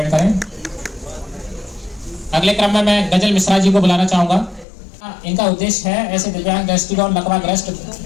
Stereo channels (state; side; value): drops out; right; at 4.7 s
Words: करें। अगले क्रम में मैं गजल मिश्रा जी को बुलाना चाहूंगा। इनका उद्देश्य है ऐसे दिव्यांग, दृष्टिगत, लकवाग्रस्त,